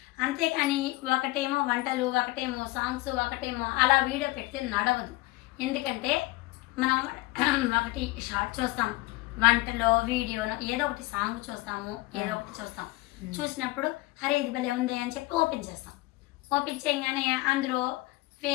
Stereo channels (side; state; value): right; quieter; 20.3 dB